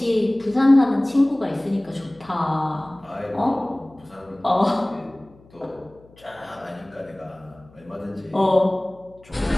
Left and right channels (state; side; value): noise; left; hum, 27 dB below the sound